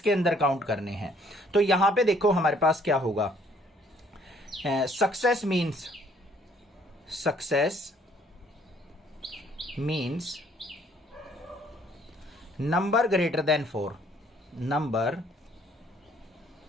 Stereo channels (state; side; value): normal; both; correlation 0.62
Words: अंदर काउंट करने हैं। तो यहां पे देखो हमारे पास क्या होगा, success means number greater than 4, number